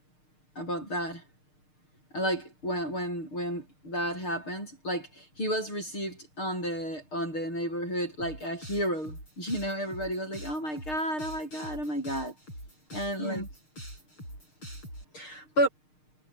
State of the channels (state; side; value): late; right; 6.5 ms